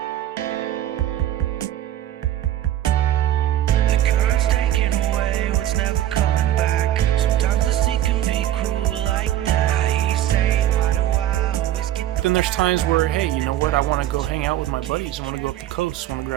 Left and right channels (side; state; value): left; quieter; 12.5 dB